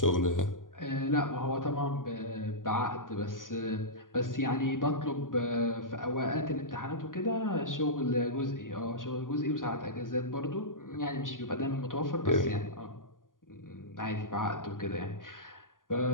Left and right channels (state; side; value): late; right; 0.89 ms